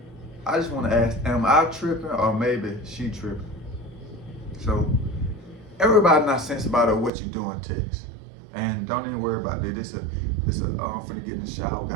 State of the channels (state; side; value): drops out; left; at 7.1 s